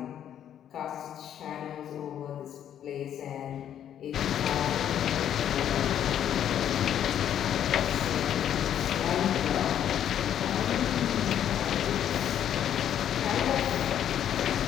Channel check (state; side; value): quieter; right; 10.0 dB